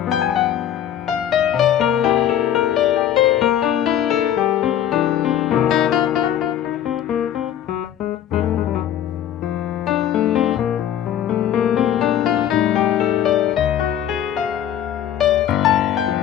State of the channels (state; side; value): quieter; right; 10.7 dB